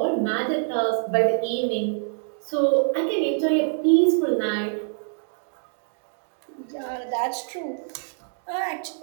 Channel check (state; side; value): silent; left; 62 dB below the other